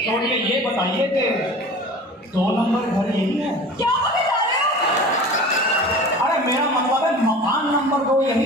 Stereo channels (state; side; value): normal; both; correlation 0.39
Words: छोड़िए, ये बताइए कि 2 नंबर घर यही है? क्या बता रहे हो? अरे मेरा मतलब है मकान नंबर 2